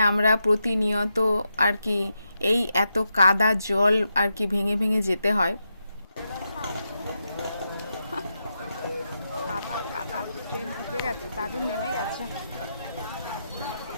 আমরা প্রতিনিয়ত আর কি এই এত কাদা জল আর কি ভেঙে ভেঙে যেতে হয়। কাদা কাদা, ট্রেন ঢুকে গেছে, দাদু নেমে গেছে।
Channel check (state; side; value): inverted; both; correlation -0.85